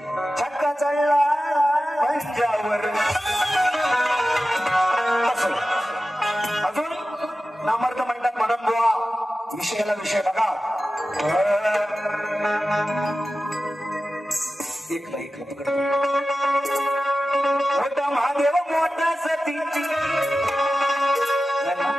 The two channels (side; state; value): both; normal; correlation 0.94